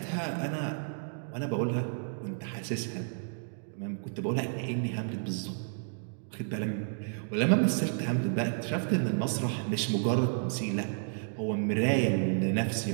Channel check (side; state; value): left; silent; digital silence